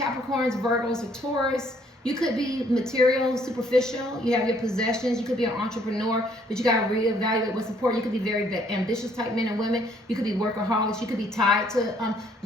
Virgos, or Taurus. You could be material, superficial. You have your possessions. You could be an entrepreneur, but you got to reevaluate what's important. You could be very ambitious type men and women. You could be workaholics. You could be tied to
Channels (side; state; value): both; normal; correlation 0.64